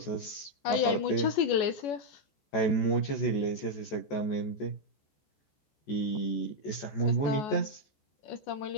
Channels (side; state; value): right; late; 14 ms